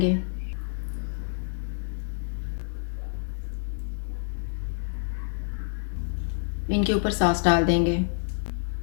इनके ऊपर सॉस डाल देंगे,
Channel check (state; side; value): silent; right; 59 dB below the other